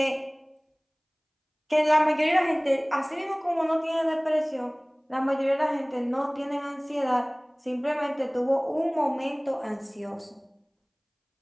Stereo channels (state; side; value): identical; both; correlation 1.00